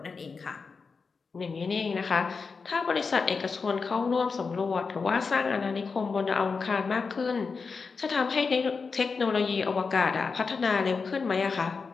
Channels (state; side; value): quieter; right; 4.9 dB